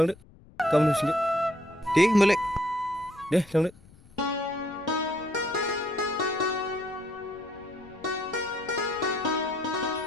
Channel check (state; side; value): noise; left; rumble, 24 dB below the sound